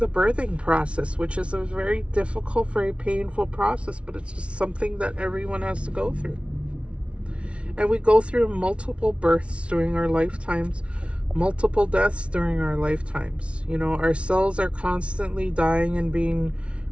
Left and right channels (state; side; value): late; left; 0.060 ms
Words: birthing process, which is a very difficult, very painful process, but it's just something that everyone has to go through. And we go through multiple births during our lifetimes, multiple deaths during our lifetimes. You know, our cells are constantly dying and being